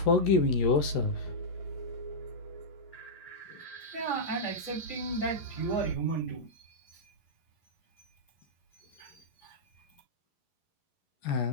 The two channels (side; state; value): right; late; 11 ms